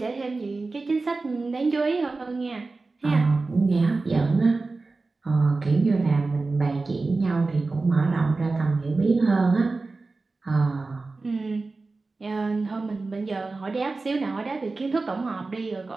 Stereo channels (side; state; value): left; quieter; 3.7 dB